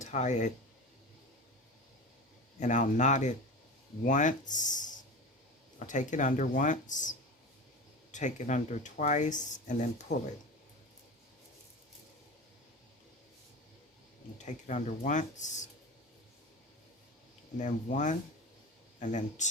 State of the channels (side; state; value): both; normal; correlation 0.30